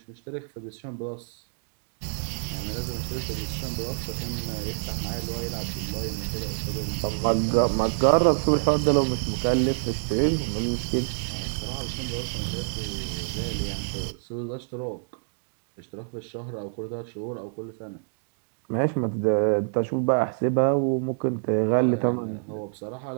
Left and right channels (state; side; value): silent; left; digital silence